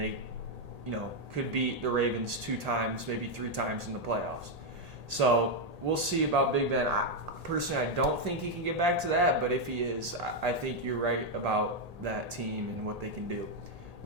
could beat the Ravens 2 times, maybe 3 times in the playoffs. So we'll see about Big Ben. Personally, I don't think he can get back to that, but if he is, I think you're right about that team and what they can do.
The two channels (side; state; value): left; late; 1.8 ms